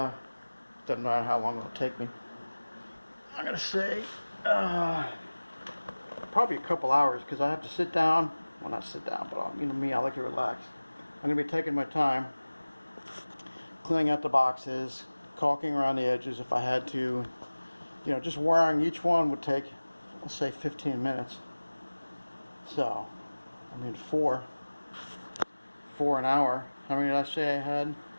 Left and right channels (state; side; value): inverted; both; correlation -1.00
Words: matter how long it'll take me. I'm gonna say probably a couple hours, because I have to sit down. Well, not sit down, but you know me, I like to relax. I'm gonna be taking my time, cleaning out the boxes, caulking around the edges if I had to. You know, just wiring each one would take, let's say, 15 minutes. So, I mean, 4 an hour. How many did I say I had?